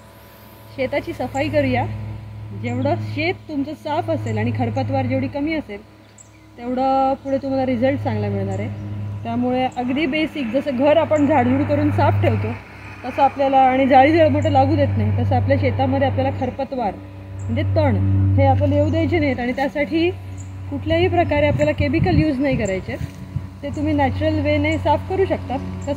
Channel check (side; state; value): both; identical; correlation 1.00